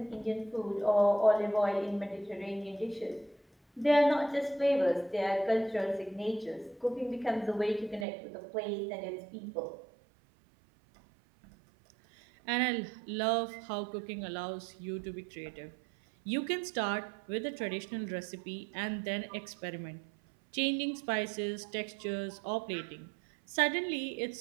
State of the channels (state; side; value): drops out; left; at 8.1 s